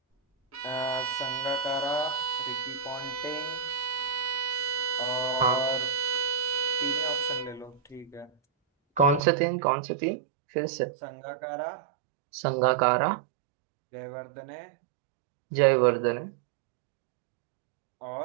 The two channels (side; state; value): left; drops out; at 9.2 s